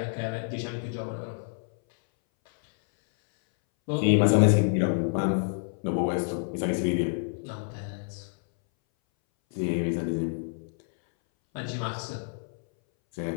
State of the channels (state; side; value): silent; right; 59 dB below the other